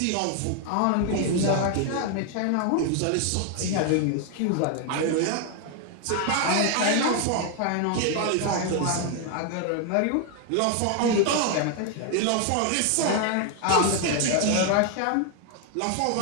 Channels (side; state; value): both; different; correlation 0.00